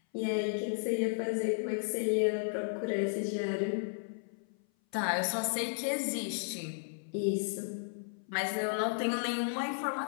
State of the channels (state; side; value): silent; right; 55 dB below the other